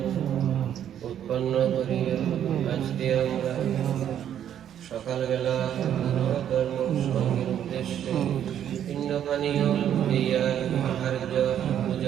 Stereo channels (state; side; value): quieter; left; 10.0 dB